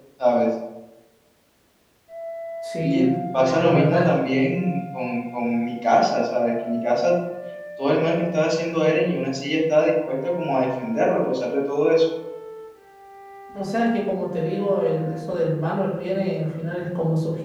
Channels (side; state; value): both; identical; correlation 1.00